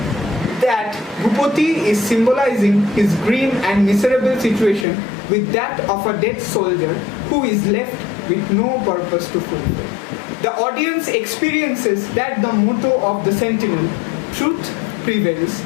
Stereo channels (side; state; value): right; drops out; at 4.9 s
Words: that Bhupati is symbolizing his grim and miserable situation with that of a dead soldier who is left with no purpose to fulfill. The audience experiences that the motto of the Sentinel, truth prevails,